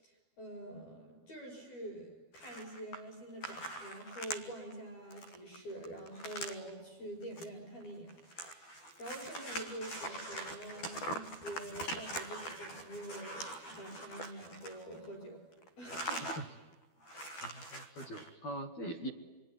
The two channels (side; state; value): right; late; 12 ms